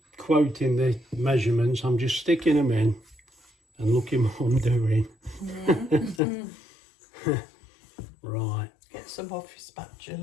quoting the measurements. I'm just sticking them in and looking what I'm doing. Right. Get some off your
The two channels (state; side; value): drops out; right; at 6.2 s